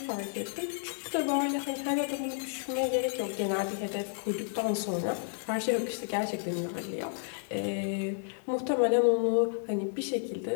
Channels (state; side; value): silent; right; 56 dB below the other